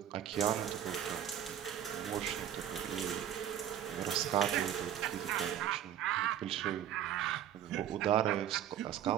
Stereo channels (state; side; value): quieter; left; 10.4 dB